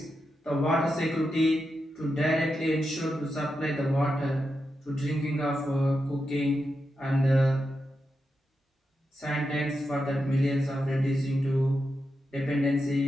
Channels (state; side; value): normal; both; correlation 0.87